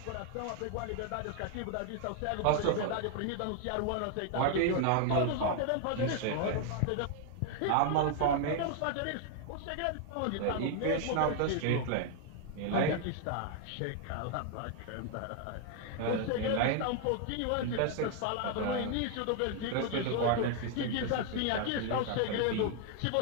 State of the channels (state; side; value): different; both; correlation 0.00